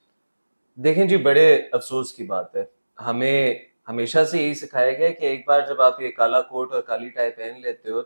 دیکھیں جی، بڑے افسوس کی بات ہے، ہمیں ہمیشہ سے یہی سکھایا گیا کہ ایک بار جب آپ یہ کالا کوٹ اور کالی ٹائی پہن لیتے ہو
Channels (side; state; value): both; inverted; correlation -1.00